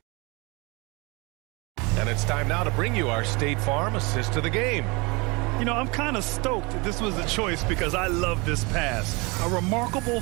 And it's time now to bring you our State Farm assist to the game. You know, I'm kind of stoked that this was a choice because I love this pass. A remarkable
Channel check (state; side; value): quieter; left; 27.2 dB